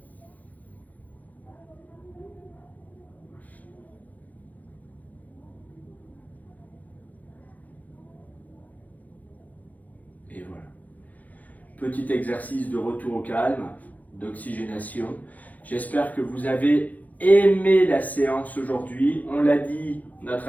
Et voilà. Petit exercice de retour au calme, d'oxygénation. J'espère que vous avez aimé la séance aujourd'hui. On l'a dit, on a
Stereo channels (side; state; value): right; late; 0.075 ms